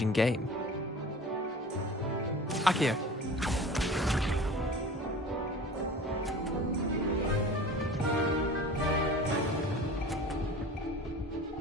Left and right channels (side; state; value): both; normal; correlation 0.39